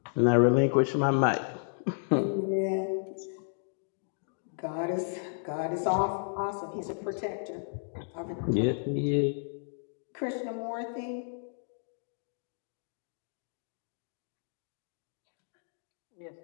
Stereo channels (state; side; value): silent; right; digital silence